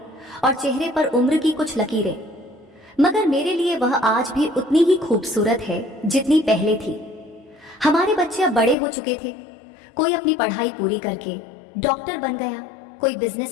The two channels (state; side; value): drops out; right; at 8.8 s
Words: और चेहरे पर उम्र की कुछ लकीरें। मगर मेरे लिए वह आज भी उतनी ही खूबसूरत है जितनी पहले थी। हमारे बच्चे अब बड़े हो चुके थे। कोई अपनी पढ़ाई पूरी करके डॉक्टर बन गया, कोई